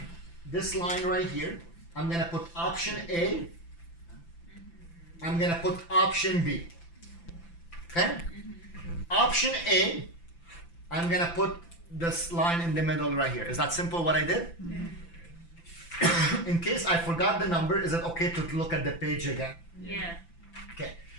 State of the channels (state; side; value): late; right; 5.9 ms